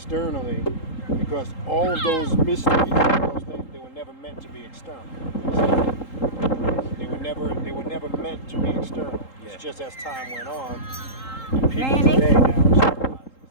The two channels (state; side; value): late; right; 3.8 ms